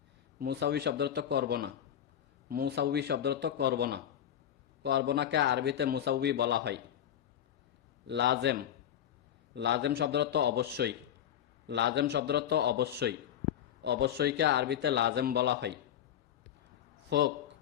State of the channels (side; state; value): right; quieter; 10.3 dB